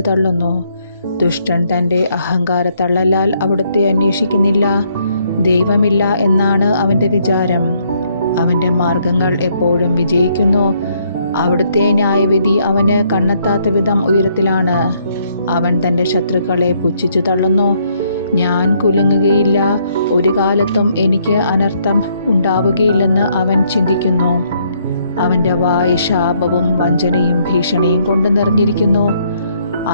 തള്ളുന്നു. ദുഷ്ടൻ തൻ്റെ അഹങ്കാരത്തള്ളലാൽ അവിടുത്തെ അന്വേഷിക്കുന്നില്ല. ദൈവമില്ല എന്നാണ് അവൻ്റെ വിചാരം. അവൻ്റെ മാർഗങ്ങൾ എപ്പോഴും വിജയിക്കുന്നു. അവിടുത്തെ ന്യായവിധി അവന് കണ്ണെത്താത്ത വിധം ഉയരത്തിലാണ്. അവൻ തൻ്റെ ശത്രുക്കളെ പുച്ഛിച്ചു തള്ളുന്നു. ഞാൻ കുലുങ്ങുകയില്ല, ഒരു കാലത്തും എനിക്ക് അനർത്ഥം ഉണ്ടാവുകയില്ലെന്ന് അവൻ ചിന്തിക്കുന്നു. അവൻ്റെ വായ് ശാപവും വഞ്ചനയും ഭീഷണിയും കൊണ്ട് നിറഞ്ഞിരിക്കുന്നു.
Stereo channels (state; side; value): inverted; both; correlation -0.70